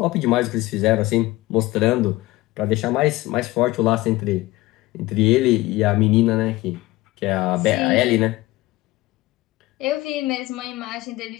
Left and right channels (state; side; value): quieter; right; 18.8 dB